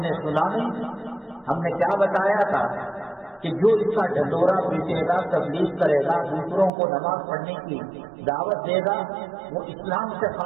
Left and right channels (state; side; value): drops out; left; at 6.7 s